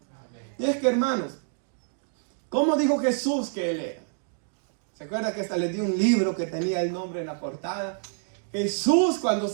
Y es que, hermanos, ¿cómo dijo Jesús que Él era? ¿Se acuerda que hasta le dio un libro que tenía el nombre en la portada? Jesús, cuando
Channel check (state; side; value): silent; left; digital silence